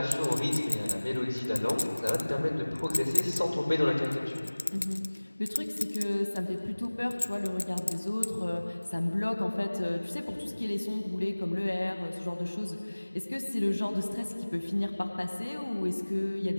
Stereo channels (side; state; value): both; inverted; correlation -1.00